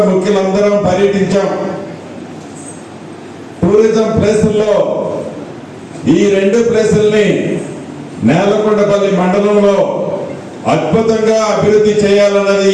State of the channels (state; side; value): identical; both; correlation 1.00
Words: ముఖ్యులందరం పర్యటించాం. టూరిజం ప్లేసుల్లో ఈ 2 ప్లేసుల్ని నేలకొండపల్లి మండలంలో అద్భుతంగా అభివృద్ధి చేయాలన్నది